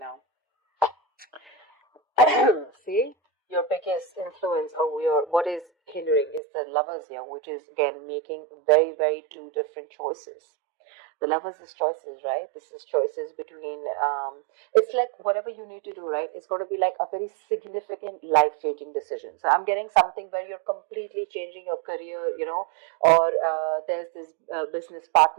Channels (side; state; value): left; drops out; at 6.4 s